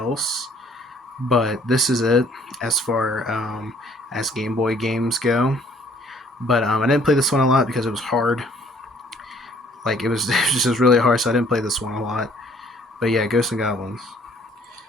but this is it as far as Game Boy games go. But I didn't play this one a lot because it was hard. Like it was, it was just really hard, so I didn't play this one a lot. But yeah, Ghosts and Goblins.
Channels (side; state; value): both; normal; correlation 0.59